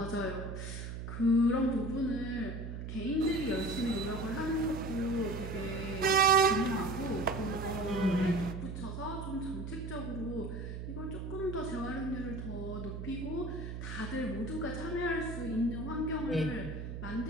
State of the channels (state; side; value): noise; right; hum, 7 dB below the sound